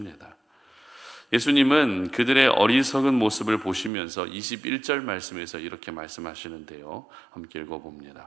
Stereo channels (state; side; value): drops out; left; at 3.9 s